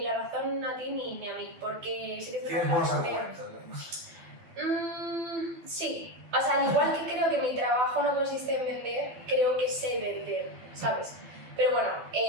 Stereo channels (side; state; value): left; late; 12 ms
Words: la razón a ti ni a mí, porque sí que es Tienes buenos argumentos, ¿no? Sí, o sea, al igual que creo que mi trabajo no consiste en vender, creo que sé vender, ¿sabes? Pero bueno,